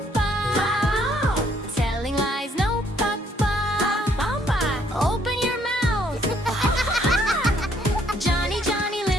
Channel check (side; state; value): both; normal; correlation 0.67